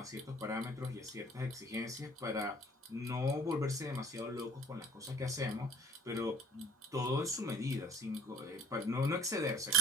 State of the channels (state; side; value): normal; both; correlation 0.51